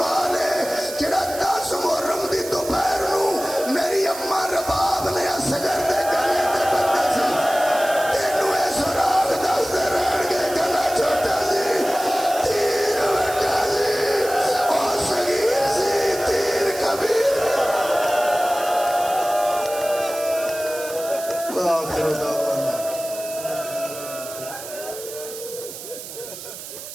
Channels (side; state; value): right; noise; hiss, 12 dB below the sound